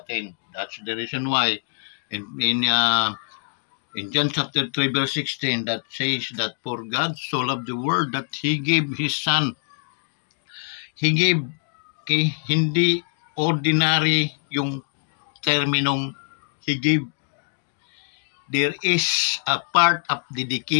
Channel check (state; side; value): silent; right; digital silence